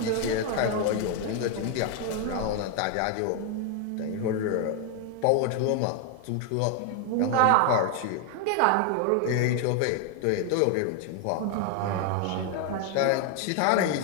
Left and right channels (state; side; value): different; both; correlation 0.01